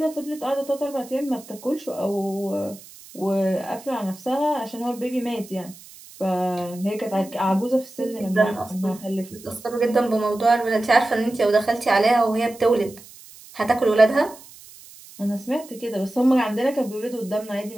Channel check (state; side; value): noise; right; hiss, 20 dB below the sound